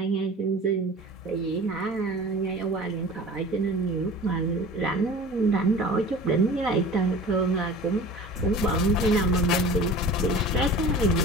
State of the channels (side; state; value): both; normal; correlation 0.39